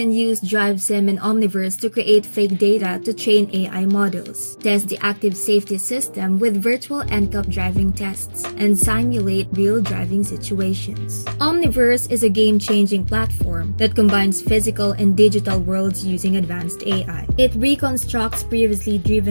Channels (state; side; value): inverted; both; correlation -1.00